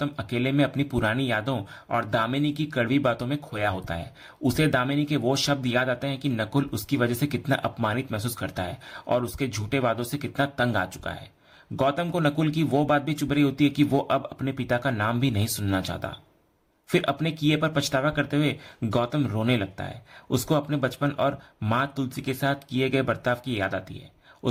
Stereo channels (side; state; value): both; identical; correlation 1.00